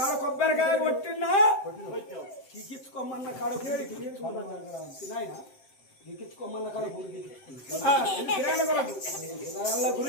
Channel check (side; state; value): right; late; 7.6 ms